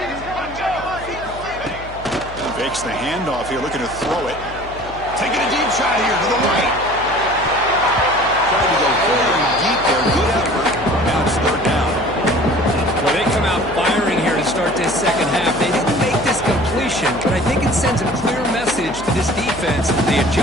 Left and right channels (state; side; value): noise; left; hum, 15 dB below the sound